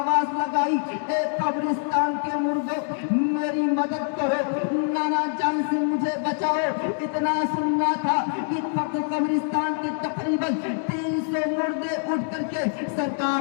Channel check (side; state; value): right; silent; digital silence